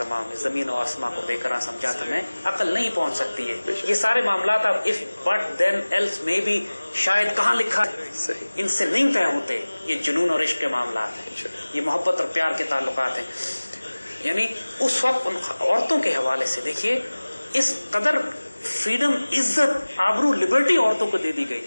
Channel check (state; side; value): inverted; both; correlation -1.00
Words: زمین و آسمان کو بے قرار سمجھا تھا میں, عقل نہیں پہنچ سکتی ہے. یہ سارے معاملات اب if but then else maybe شاید کہاں لکھا ہے, ان سے نہیں طے ہوتے. یہ جنون اور عشق کے معاملات ہیں, یہ محبت اور پیار کے تعلقات ہیں. یعنی اس وقت ان عورتوں کے حوالے سے دیکھیے اس قدر فریڈم, عزت, آبرو, لبرٹی عورتوں کو دے دی گئی